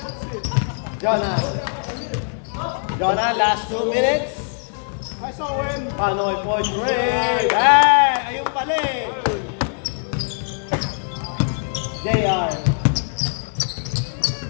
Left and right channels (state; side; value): silent; right; digital silence